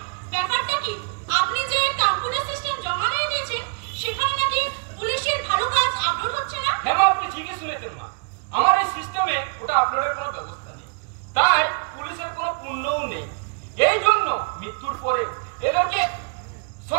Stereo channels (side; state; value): left; quieter; 39.6 dB